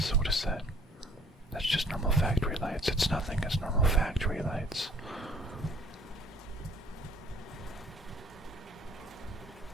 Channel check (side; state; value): both; normal; correlation 0.58